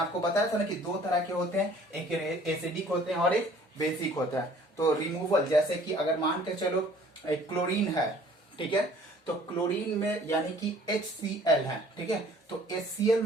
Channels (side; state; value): both; normal; correlation 0.54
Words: बताया था ना कि दो तरह के होते हैं, एक एसिडिक होते हैं और एक बेसिक होता है। तो रिमूवल, जैसे कि अगर मान के चलो एक क्लोरीन है, ठीक है, तो क्लोरीन में यानी कि HCl है। ठीक है, तो HCl